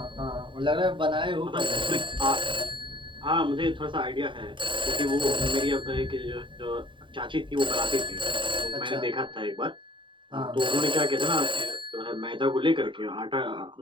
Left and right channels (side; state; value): left; late; 0.24 ms